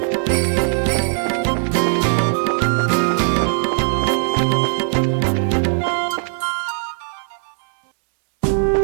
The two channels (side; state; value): left; silent; 66 dB below the other